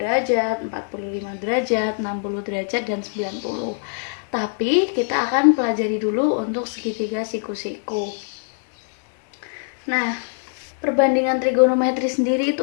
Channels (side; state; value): right; silent; digital silence